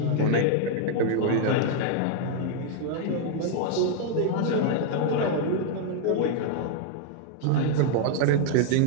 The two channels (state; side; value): different; both; correlation 0.00